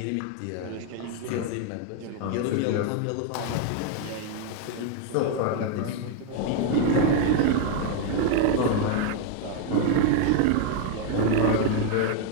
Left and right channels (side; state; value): both; different; correlation 0.01